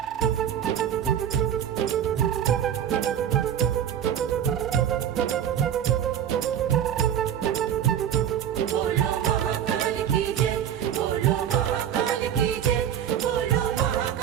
बोलो महाकाल की जय, बोलो महाकाल की जय, बोलो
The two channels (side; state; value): left; quieter; 9.7 dB